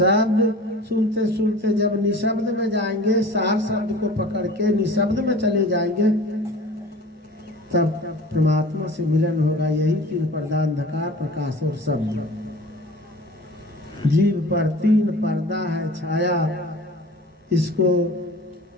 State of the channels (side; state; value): both; normal; correlation 0.41